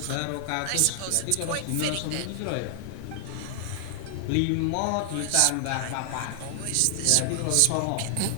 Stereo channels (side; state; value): both; different; correlation 0.00